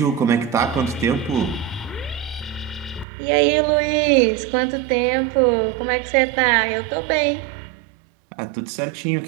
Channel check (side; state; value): left; drops out; at 3.1 s